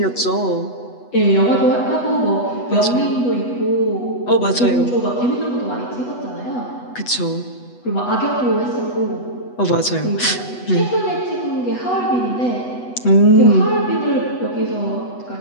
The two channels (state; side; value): late; right; 8.1 ms